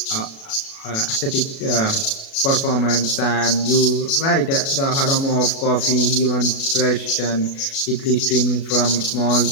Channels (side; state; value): right; late; 37 ms